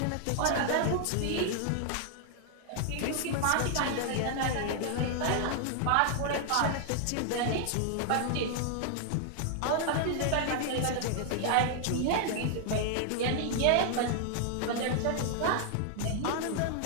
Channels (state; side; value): different; both; correlation 0.00